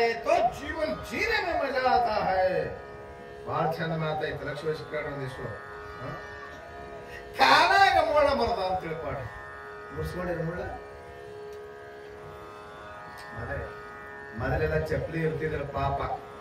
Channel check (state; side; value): identical; both; correlation 1.00